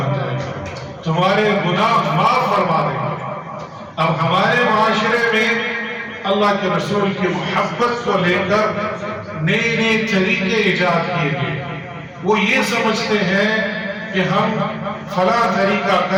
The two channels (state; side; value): identical; both; correlation 1.00